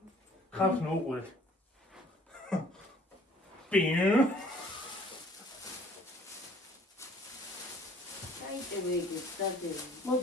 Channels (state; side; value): normal; both; correlation 0.55